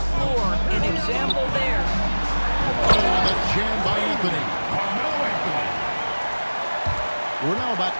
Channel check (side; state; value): both; inverted; correlation -1.00